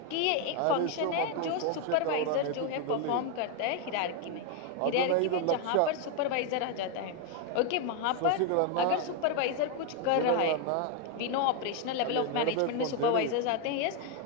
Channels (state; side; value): different; both; correlation 0.01